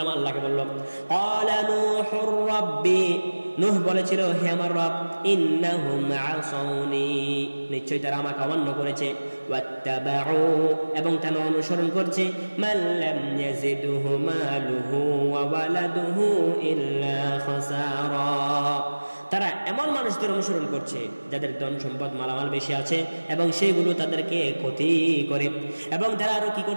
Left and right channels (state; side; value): inverted; both; correlation -1.00